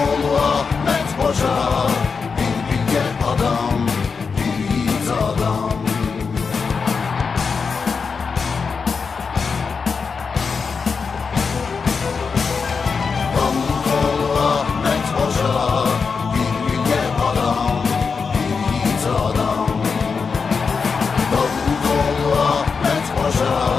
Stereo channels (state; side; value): quieter; right; 5.3 dB